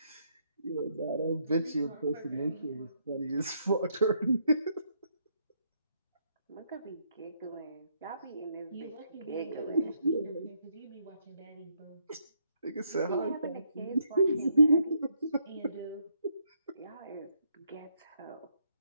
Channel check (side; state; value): both; inverted; correlation -0.74